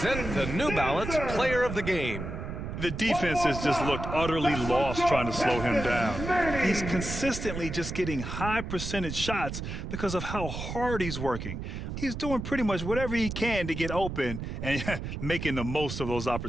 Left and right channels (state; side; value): noise; right; rumble, 6 dB below the sound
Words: the New Balance Player of the Game. The defense has just looked utterly lost trying to slow him down. He's consistently just getting high percentage shots because of how hard he's working. He's doing pretty much whatever he can to get open and making the most of those